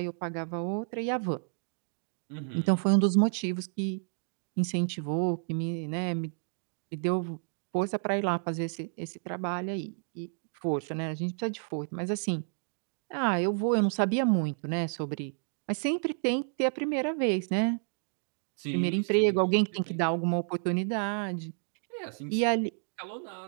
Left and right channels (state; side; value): silent; left; 57 dB below the other